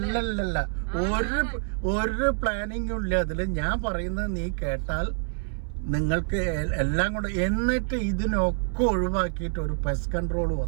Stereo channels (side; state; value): left; silent; 60 dB below the other